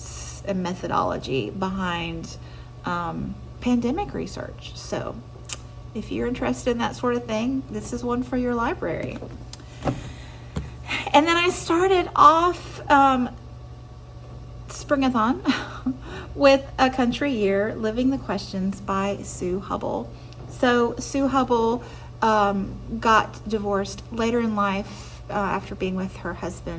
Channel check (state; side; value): identical; both; correlation 1.00